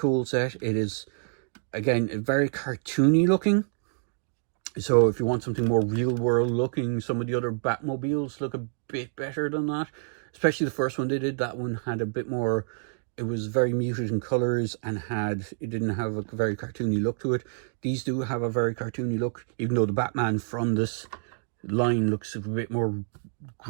set. It is, again, very cartoony looking. So if you want something more real world looking, some of the other Batmobiles look a bit better than that. Especially the first one they did. That one had a bit more, it was very muted in colors, and it didn't have a very cartoony look to it. These do have a very cartoony look, even though the Batman from this line looks a bit more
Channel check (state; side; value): silent; left; digital silence